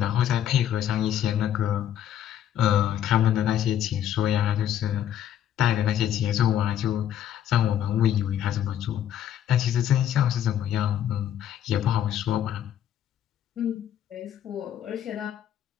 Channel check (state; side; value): quieter; right; 10.7 dB